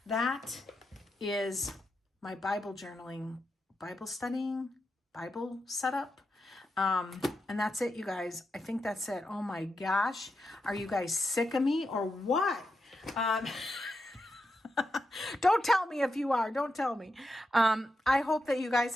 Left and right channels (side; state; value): both; normal; correlation 0.86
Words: that is my Bible journaling, Bible studying, Bible setup. And that's it, you guys. I think that's it. Oh my gosh. Are you guys sick of me or what? Don't tell me if you are. Don't tell me. I hope that you guys